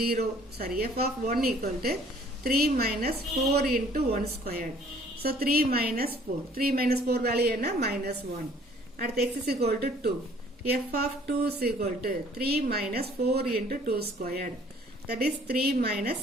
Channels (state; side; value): normal; both; correlation 0.57